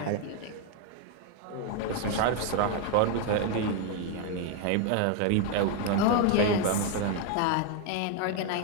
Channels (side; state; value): both; different; correlation 0.01